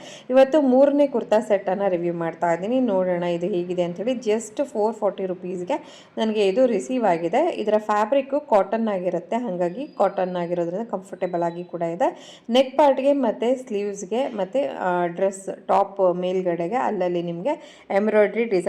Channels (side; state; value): both; identical; correlation 1.00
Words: ಇವತ್ತು 3ನೇ ಕುರ್ತಾ ಸೆಟ್ಟನ್ನು ರಿವ್ಯೂ ಮಾಡ್ತಾ ಇದ್ದೀನಿ. ನೋಡೋಣ ಇದು ಹೇಗಿದೆ ಅಂಥೇಳಿ. ಜಸ್ಟ್ 440 ರುಪೀಸ್ಗೆ ನನಗೆ ಇದು ರಿಸೀವ್ ಆಗಿದೆ. ಇದರ ಫ್ಯಾಬ್ರಿಕ್ಕು ಕಾಟನ್ ಆಗಿರುತ್ತೆ, ಹಾಗಾಗಿ ಕಾಟನ್ ಆಗಿರೋದ್ರಿಂದ ಕಂಫರ್ಟೇಬಲ್ ಆಗಿ ಕೂಡ ಇದೆ. ನೆಕ್ ಪಾರ್ಟ್ಗೆ ಮತ್ತು ಸ್ಲೀವ್ಸ್ಗೆ ಮತ್ತು ಡ್ರೆಸ್ ಟಾಪ್ ಮೇಲ್ಗಡೆಗೆ ಅಲ್ಲಲ್ಲಿ ನಿಮಗೆ ಎಂಬ್ರಾಯ್ಡ್ರಿ